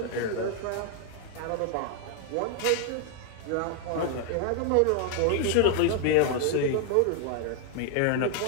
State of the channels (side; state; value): both; different; correlation 0.00